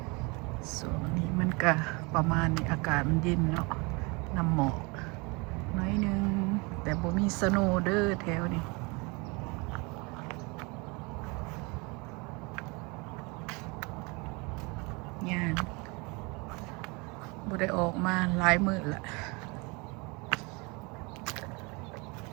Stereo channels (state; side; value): quieter; left; 28.3 dB